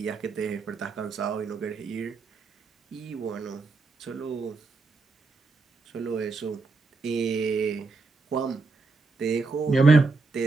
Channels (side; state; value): left; quieter; 4.0 dB